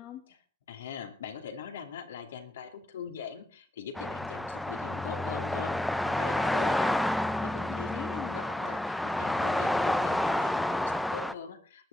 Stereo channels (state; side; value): normal; both; correlation 0.86